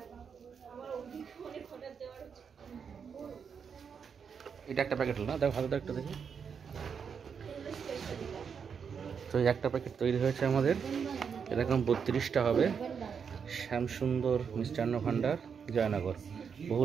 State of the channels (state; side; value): quieter; left; 6.6 dB